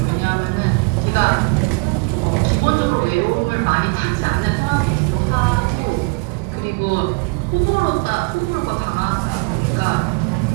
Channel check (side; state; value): left; quieter; 31.0 dB